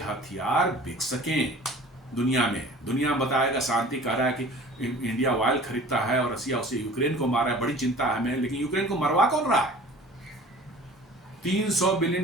बिक सकें दुनिया में। दुनिया बताएगा, शांति कह रहा है कि इंडिया ऑयल खरीदता है और रसिया उसे यूक्रेन को मारा है, बड़ी चिंता है हमें। लेकिन यूक्रेन को मरवा कौन रहा है? 300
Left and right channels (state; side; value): normal; both; correlation 0.45